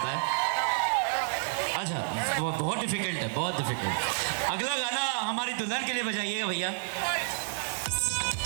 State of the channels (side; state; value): left; silent; digital silence